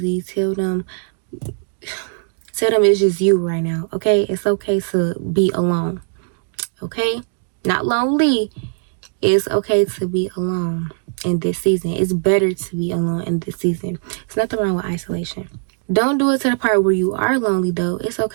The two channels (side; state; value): left; silent; digital silence